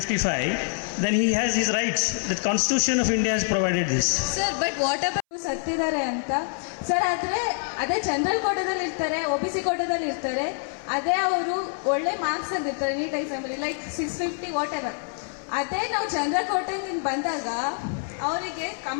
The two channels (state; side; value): silent; right; 61 dB below the other